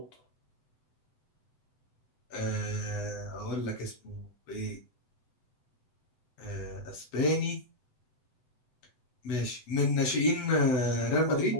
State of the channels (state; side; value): late; right; 7.9 ms